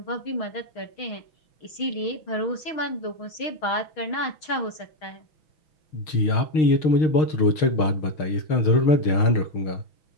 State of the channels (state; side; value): late; right; 6.4 ms